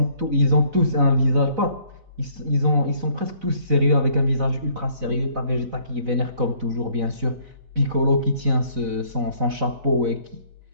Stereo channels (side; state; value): left; late; 4.0 ms